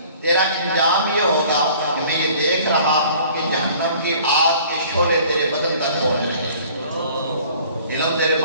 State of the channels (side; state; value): both; inverted; correlation -0.51